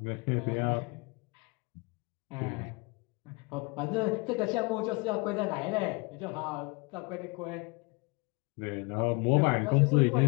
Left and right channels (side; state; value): right; quieter; 28.6 dB